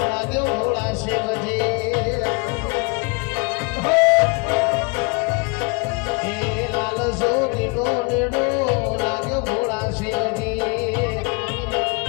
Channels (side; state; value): right; quieter; 31.3 dB